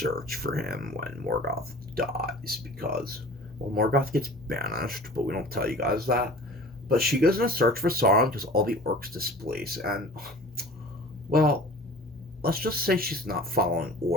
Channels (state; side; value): normal; both; correlation 0.42